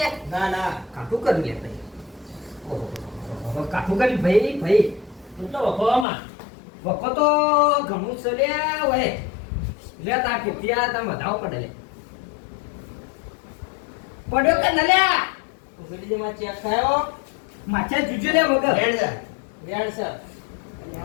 ના ના કાઠું કર્યું લે ભાઈ ઓહો કાઠું કર્યું ભાઈ તું તો વખોવામાં વખો તો ઘણું છે લે ઓય લે તા ત્યાં તમે વધાવો પડે લે પડ્યો કે ન લે ઉગડી જે માં ચેક થયો માછા જુજો લે વગર રેડ જા. રેડ છે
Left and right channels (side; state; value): right; drops out; at 6.1 s